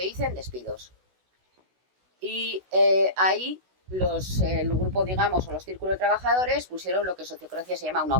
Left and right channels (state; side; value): late; left; 16 ms